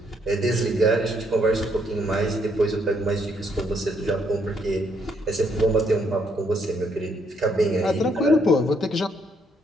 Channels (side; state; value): both; normal; correlation 0.71